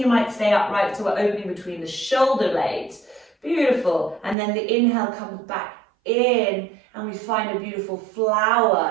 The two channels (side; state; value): left; drops out; at 4.4 s